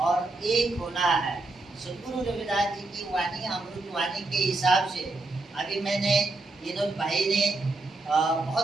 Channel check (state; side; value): quieter; left; 3.0 dB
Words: एक होना है। सदगुरु रविदास जी की वाणी अमृत वाणी के हिसाब से अभी मैंने विनोद भाई ने